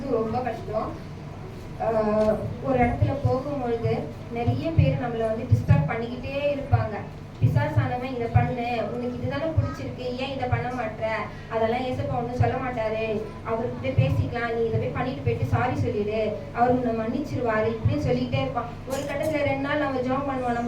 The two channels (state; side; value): identical; both; correlation 1.00